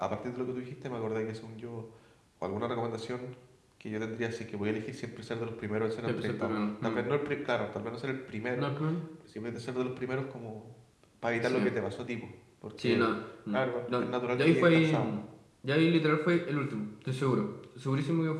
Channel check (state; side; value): identical; both; correlation 1.00